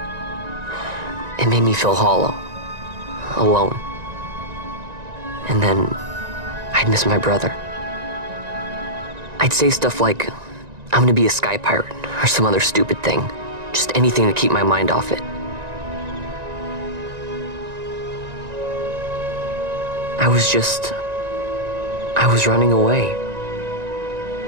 It made me feel hollow, alone. And then, I'd miss my brother. I'd say stuff like, I'm gonna be a sky pirate, or some other stupid thing. Just anything to keep my mind off it. I was running away.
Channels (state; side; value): late; left; 1.9 ms